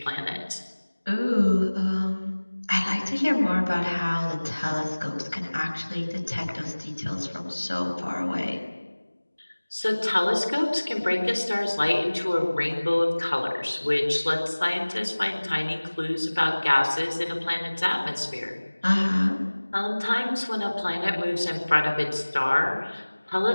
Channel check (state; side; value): inverted; both; correlation -1.00